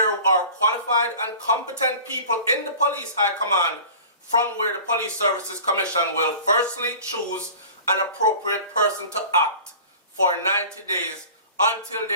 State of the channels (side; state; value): both; inverted; correlation -0.41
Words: are qualified and competent people in the police high command from where the Police Services Commission will firstly choose an appropriate person to act for 90 days until